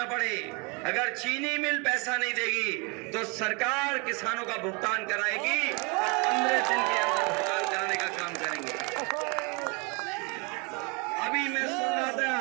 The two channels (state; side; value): quieter; left; 30.7 dB